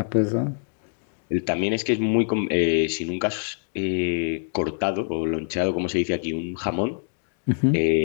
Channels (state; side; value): silent; right; digital silence